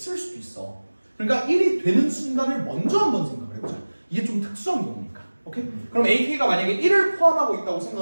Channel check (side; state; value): both; inverted; correlation -1.00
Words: 수도 있어. 그러니까 1이 되는 순간을 먼저 한번 생각을 해보자. 이게 좀 특수한 경우니까. 오케이? 그럼 AK가 만약에 1을 포함하고 있다고